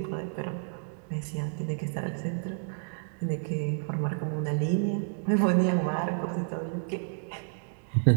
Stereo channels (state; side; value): silent; left; digital silence